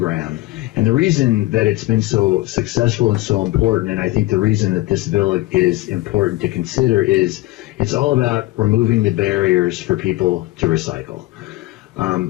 And the reason that it's been so successful and so important, and I think the reason that this bill is important to consider, is it's all about removing the barriers for people to recycle.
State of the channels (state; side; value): quieter; right; 18.8 dB